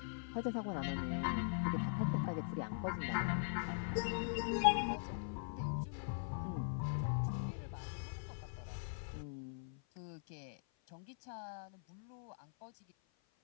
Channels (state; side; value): silent; right; 50 dB below the other